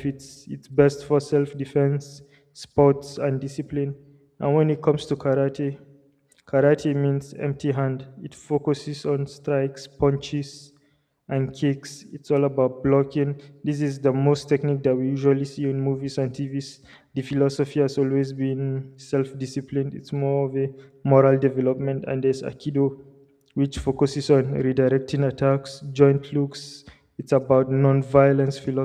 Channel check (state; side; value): identical; both; correlation 1.00